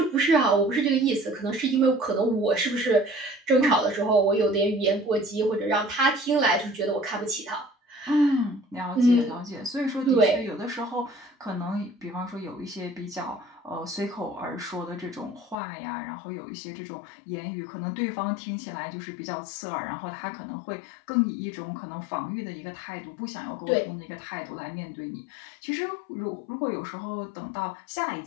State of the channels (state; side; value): drops out; right; at 15.6 s